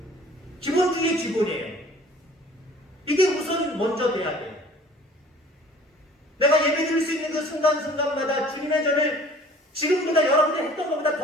기본 중에 기본이에요. 이게 우선 먼저 돼야 돼요. 내가 예배 드릴 수 있는 그 순간순간마다 주님의 전을 지금보다 여러분이 했던 것보다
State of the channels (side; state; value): both; normal; correlation 0.50